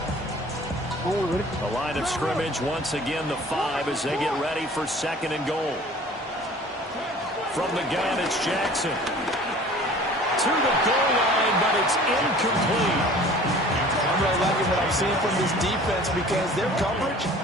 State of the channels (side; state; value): both; normal; correlation 0.47